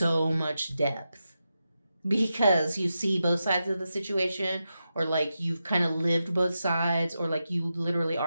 much depth. Because you see both sides of the situation, or like you've kind of lived both sides, or like you literally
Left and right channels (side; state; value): both; inverted; correlation -0.89